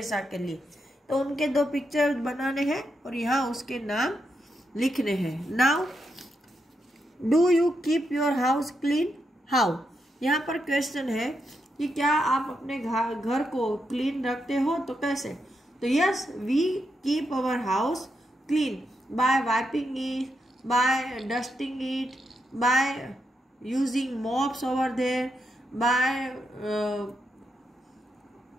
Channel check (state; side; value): normal; both; correlation 0.83